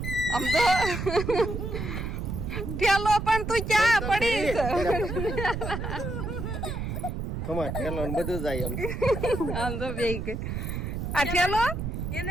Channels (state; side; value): noise; right; rumble, 4 dB below the sound